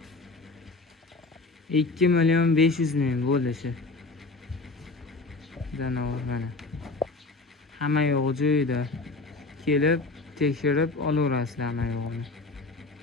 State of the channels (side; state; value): right; quieter; 3.4 dB